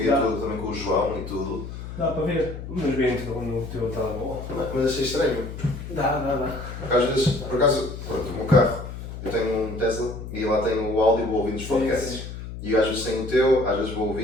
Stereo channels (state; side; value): noise; left; hum, 9 dB below the sound